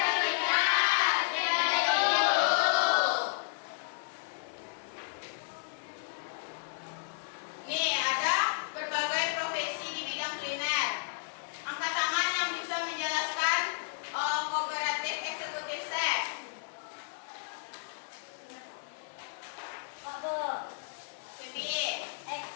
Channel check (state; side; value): silent; right; digital silence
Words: nih ada berbagai profesi di bidang kuliner. Angkat tangan yang bisa menjelaskan kooperatif eksekutif chef. Febi,